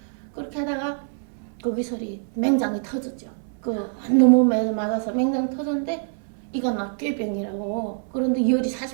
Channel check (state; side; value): silent; left; 62 dB below the other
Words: 그렇게 하다가 거기서 맹장이 터졌죠. 너무 맞아서 맹장 터졌는데 이건 꾀병이라고. 그런데 열이